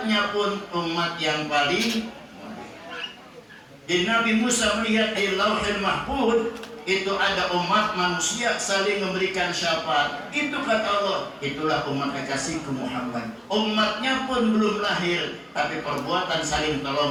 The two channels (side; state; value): both; identical; correlation 1.00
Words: pun umat yang paling mulia. Jadi Nabi Musa melihat di Lauhil Mahfuz itu ada umat manusia saling memberikan syafaat. Itu kata Allah, itulah umat kekasihku Muhammad. Umatnya pun belum lahir, tapi perbuatan saling